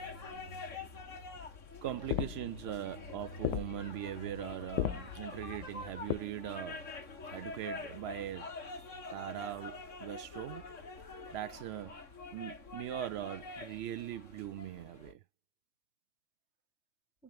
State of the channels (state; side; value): late; right; 3.6 ms